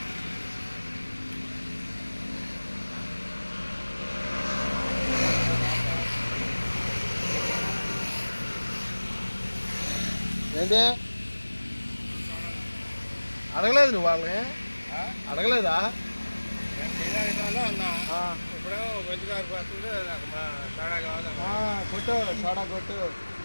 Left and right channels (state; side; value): inverted; both; correlation -1.00